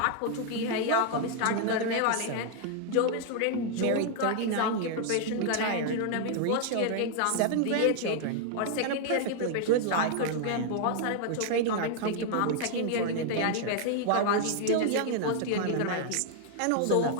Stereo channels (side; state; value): both; different; correlation 0.00